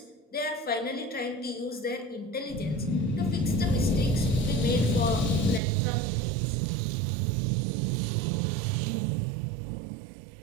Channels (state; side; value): drops out; left; at 5.6 s